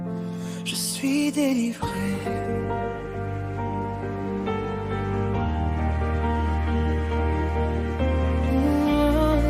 je suis délivré.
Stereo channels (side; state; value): both; identical; correlation 1.00